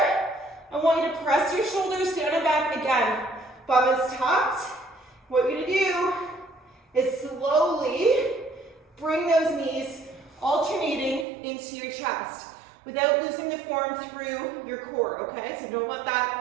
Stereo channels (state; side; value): drops out; left; at 11.2 s